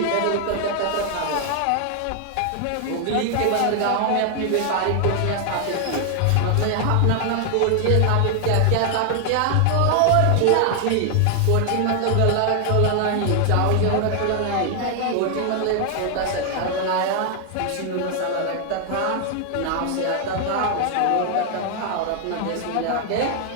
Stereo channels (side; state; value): both; different; correlation 0.00